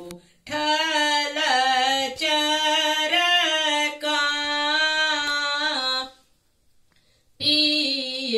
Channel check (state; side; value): identical; both; correlation 1.00